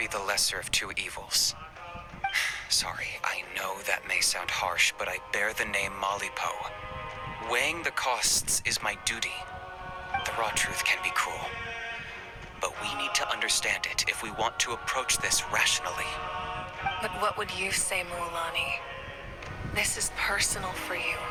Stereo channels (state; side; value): identical; both; correlation 1.00